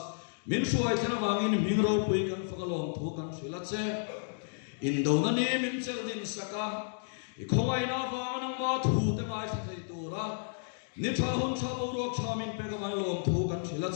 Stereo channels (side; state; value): right; silent; digital silence